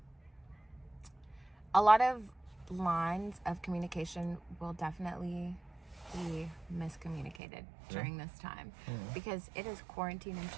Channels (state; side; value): drops out; left; at 7.4 s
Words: a lot of lines of communication will definitely be miscommunicated during this time because it is quarantine and